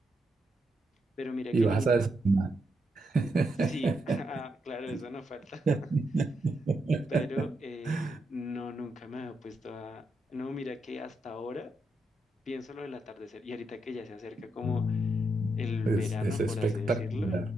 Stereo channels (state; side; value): normal; both; correlation 0.82